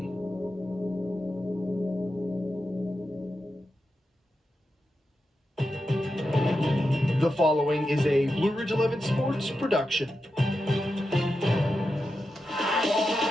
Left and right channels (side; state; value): both; normal; correlation 0.89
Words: The following is a Blue Ridge 11 Sports production.